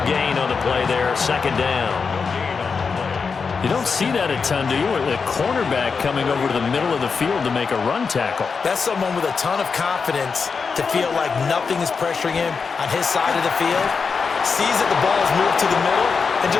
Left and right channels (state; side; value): quieter; right; 5.3 dB